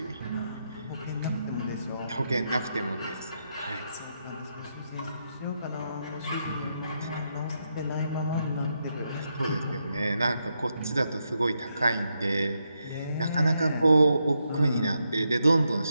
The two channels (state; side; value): inverted; both; correlation -0.82